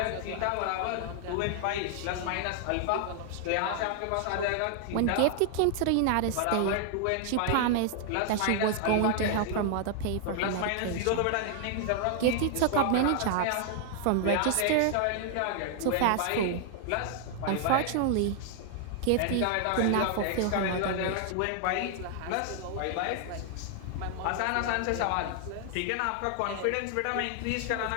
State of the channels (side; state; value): both; different; correlation 0.00